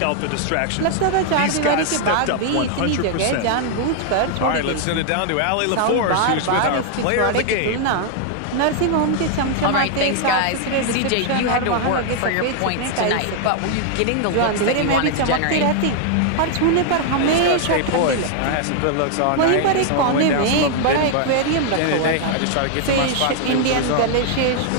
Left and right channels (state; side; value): different; both; correlation 0.00